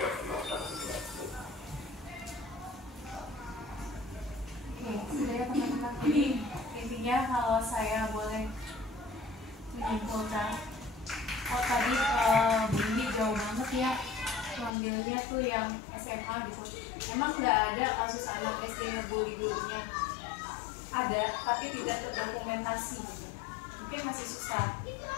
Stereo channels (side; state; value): right; drops out; at 14.7 s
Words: pelaksanaan berlaku. Sudah ya teman-teman. Intinya kalau saya boleh menyimpulkan, tadi Bu Indi jauh banget ya mengambil gurunya tuh yang SMA gitu. Emang nggak ada kasus anak SD ngebully gurunya, ada tapi tidak terdokumentasi gitu. Mungkin masih susah,